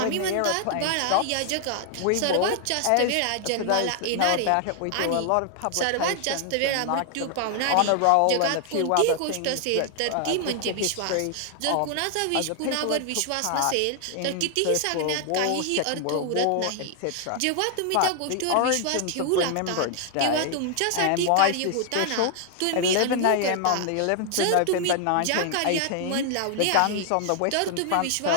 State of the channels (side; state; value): both; different; correlation 0.00